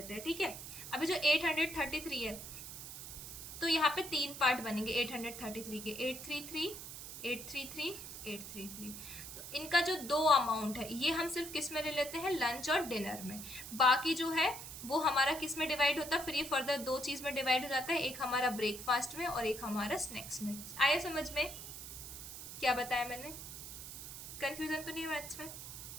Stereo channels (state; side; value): noise; right; hiss, 10 dB below the sound